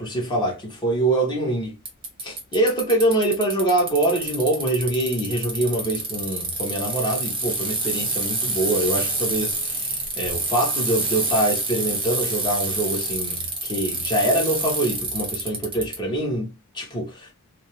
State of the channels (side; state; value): both; normal; correlation 0.13